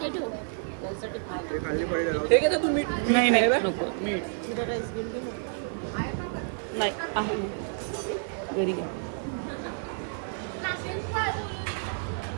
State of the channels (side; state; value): left; silent; 58 dB below the other